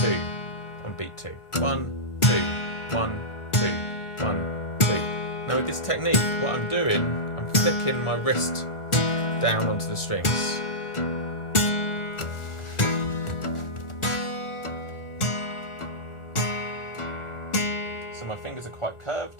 on beat 2. 1, 2, 1, 2, 1, 2. Now with this technique, what I'm doing, I'm flicking my wrist down onto the strings. So my fingers are quite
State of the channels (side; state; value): right; late; 1.4 ms